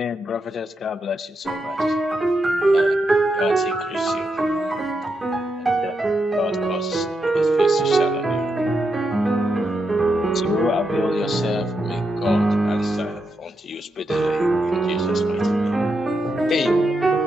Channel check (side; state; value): both; normal; correlation 0.84